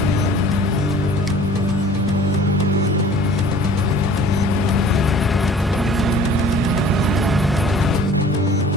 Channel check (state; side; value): normal; both; correlation 0.48